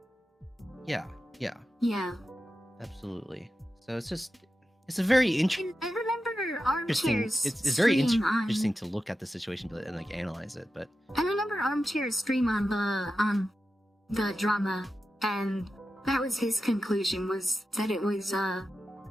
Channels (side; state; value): both; normal; correlation 0.91